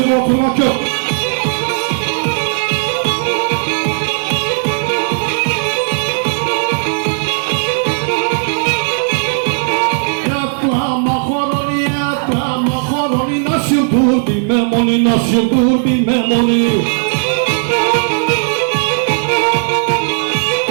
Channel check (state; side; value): silent; left; digital silence